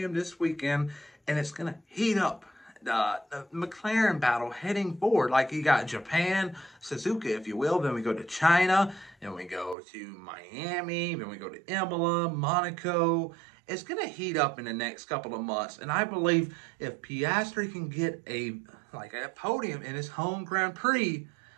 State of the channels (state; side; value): drops out; left; at 9.8 s